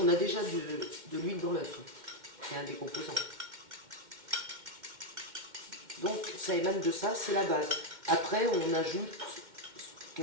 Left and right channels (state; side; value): late; left; 2.1 ms